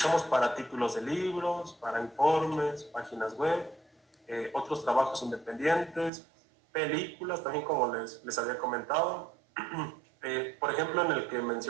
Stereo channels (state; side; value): drops out; left; at 6.1 s